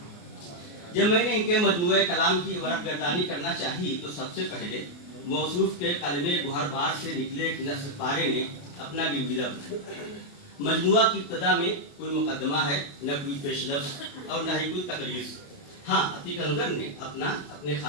جب میں نے ان کے مجموعہ کلام کی ورق گردانی کرنا چاہی تو سب سے پہلے موصوف کے قلم گوہر بار سے نکلے ایک نثر پارے نے اپنا گنجیدہ بنایا. مجموعہ کی ابتدا میں کوئی مقدمہ ہے، نہ کوئی پیش لفظ اور نہ ہی کوئی تقریر. ہاں، عتیق انظر نے اپنے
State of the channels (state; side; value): late; right; 28 ms